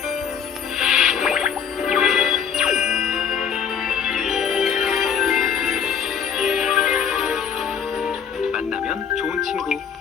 만나면 좋은 친구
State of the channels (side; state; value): right; quieter; 7.3 dB